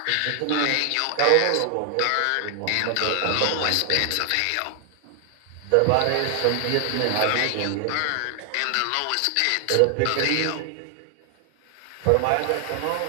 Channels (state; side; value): different; both; correlation 0.00